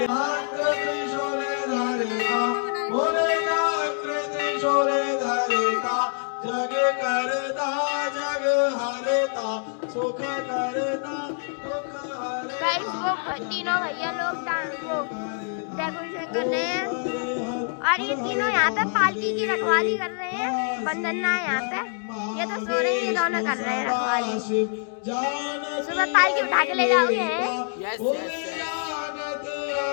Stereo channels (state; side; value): silent; right; 60 dB below the other